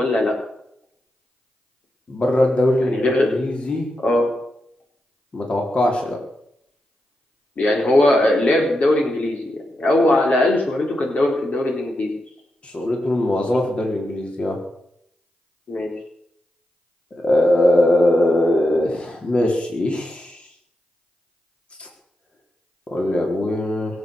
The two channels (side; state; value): both; normal; correlation 0.87